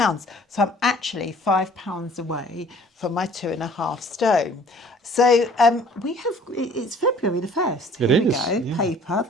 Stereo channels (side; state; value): both; normal; correlation 0.53